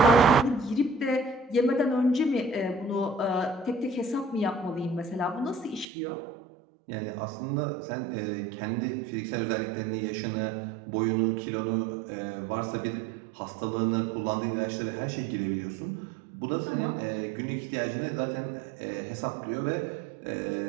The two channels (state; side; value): drops out; left; at 5.9 s